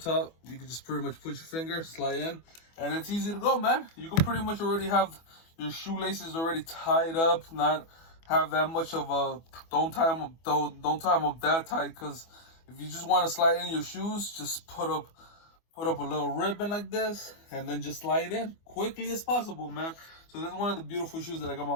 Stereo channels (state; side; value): late; right; 24 ms